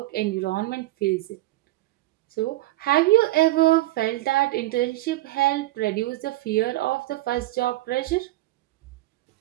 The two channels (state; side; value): quieter; left; 17.4 dB